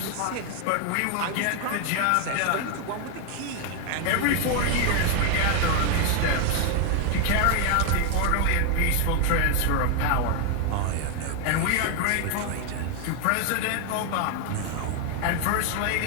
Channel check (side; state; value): both; different; correlation 0.01